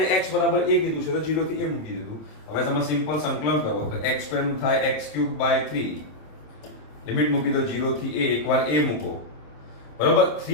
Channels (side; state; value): right; late; 26 ms